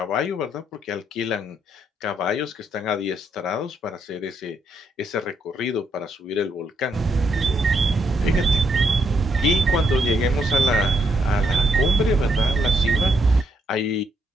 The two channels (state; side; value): normal; both; correlation 0.76